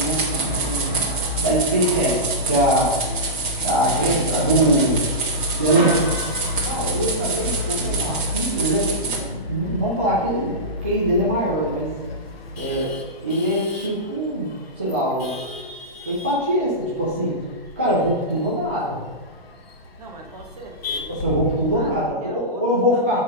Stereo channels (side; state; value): both; normal; correlation -0.15